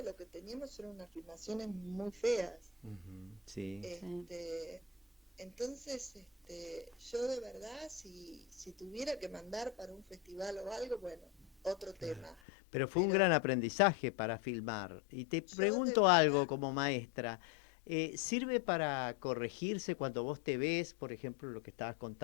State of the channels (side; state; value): right; drops out; at 12.4 s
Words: lo que teníamos eran unas filmaciones muy feas. Ujú, sí. Entonces, yo de verdad, si tuviera que mandar para un festival o algo, bueno, otro tema. Pero fue un Pero gran aprendizaje para filmar. Y te yo de pregunto algo verdad, como maestra. ¿Sirve para corregirse cuando vos te ves, por ejemplo, lo que estabas